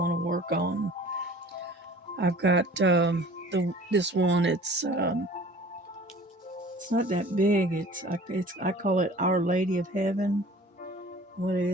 to work on. I've got this one. It's not that big. I call it Our Lady of Heaven. What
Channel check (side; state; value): both; normal; correlation 0.47